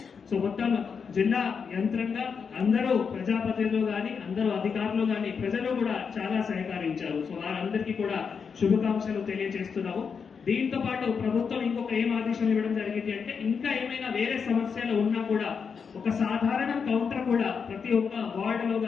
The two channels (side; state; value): right; quieter; 6.1 dB